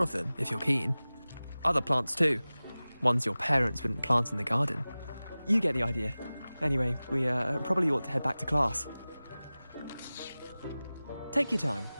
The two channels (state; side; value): inverted; both; correlation -0.98